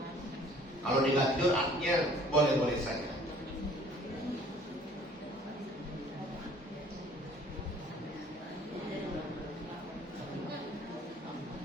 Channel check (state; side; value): normal; both; correlation 0.54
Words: Kalau dia nggak tidur, artinya boleh-boleh saja.